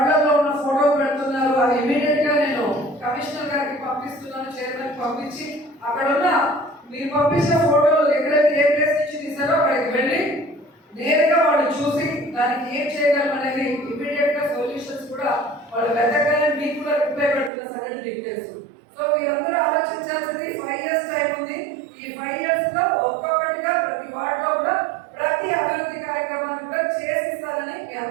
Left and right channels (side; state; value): left; drops out; at 17.5 s